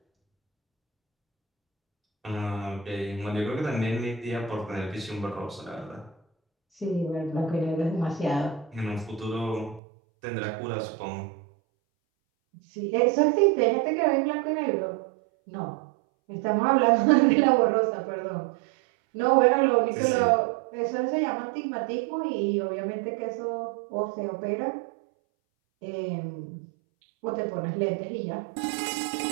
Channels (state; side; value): drops out; left; at 9.8 s